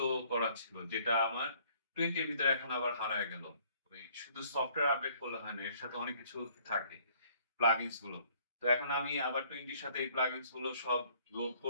করা ছিল, যেটা আমার 20 এর ভিতরে এখন আবার হারায় গেল। ওই শুধু সফটওয়্যার আপডেট করলে হয় না, এর সাথে অনেক কিছু থাকে, প্লাগইনস গুলো। তো এখন আমি আবার 20 এর সাথে এই প্লাগইনস গুলো সব লোড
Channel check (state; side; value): inverted; both; correlation -0.61